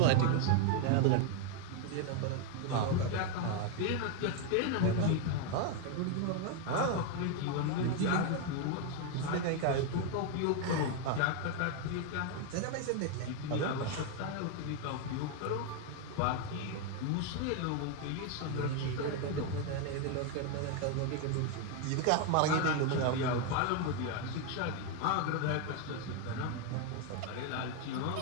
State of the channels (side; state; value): both; different; correlation 0.01